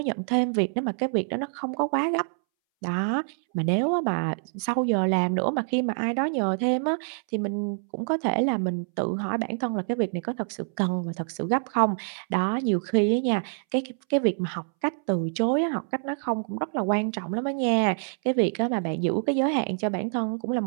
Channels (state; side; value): silent; left; 61 dB below the other